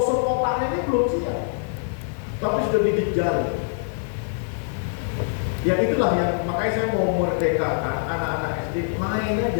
otaknya ini belum siap, tapi sudah dikejar. Ya itulah yang makanya saya mau merdekakan anak-anak SD main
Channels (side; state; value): right; silent; digital silence